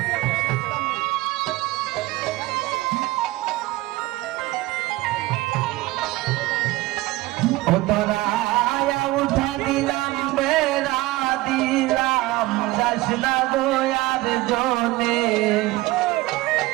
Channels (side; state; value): left; quieter; 19.2 dB